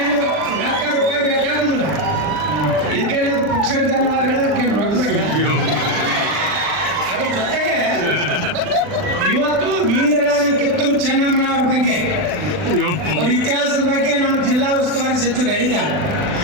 ರೂಪಾಯಿ ಬೇಕಾಗುದಿಲ್ಲ, ಇದಕ್ಕೆ ಪುಕ್ಷ ಧನ್ಯವಾದಗಳಕ್ಕೆ ಅದ್ರ ಜೊತೆಗೆ ಇವತ್ತು ವೀರರಾಣಿ ಕಿತ್ತೂರು ಚೆನ್ನಮ್ಮನವರ ಬಗ್ಗೆ ಅವ್ರ ಇತಿಹಾಸದ ಬಗ್ಗೆ ನಮ್ಮ ಜಿಲ್ಲಾ ಉಸ್ತುವಾರಿ ಸಚಿವರು ಹೇಳಿದ್ದಾರೆ.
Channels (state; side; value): late; left; 40 ms